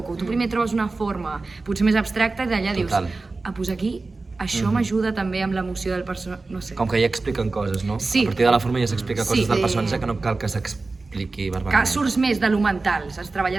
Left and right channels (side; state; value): left; quieter; 3.6 dB